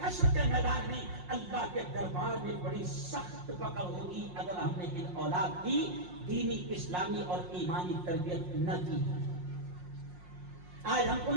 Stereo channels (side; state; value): left; late; 5.6 ms